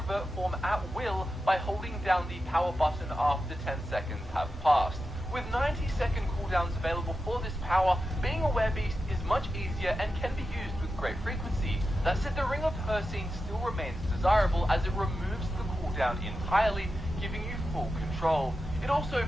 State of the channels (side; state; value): both; normal; correlation 0.90